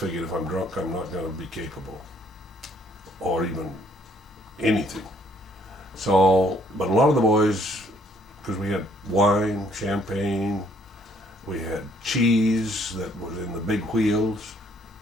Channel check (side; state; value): both; normal; correlation 0.65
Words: if I'm drunk, I'm not going to be capable, or even anything. So, but a lot of the boys, because we had wine, champagne, we had cheese that was in the big wheels.